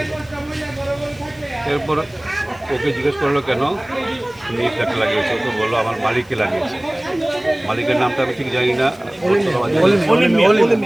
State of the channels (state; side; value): noise; left; hiss, 28 dB below the sound